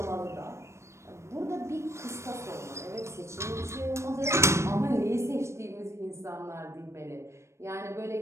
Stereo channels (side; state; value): left; late; 0.13 ms